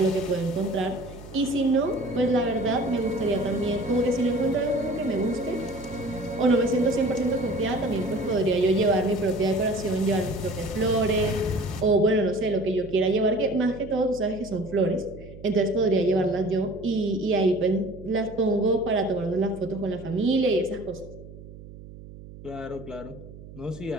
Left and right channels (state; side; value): noise; right; hum, 16 dB below the sound